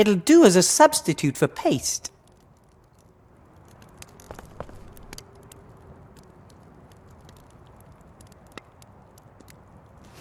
do as a substitute for paste.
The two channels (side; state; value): both; identical; correlation 1.00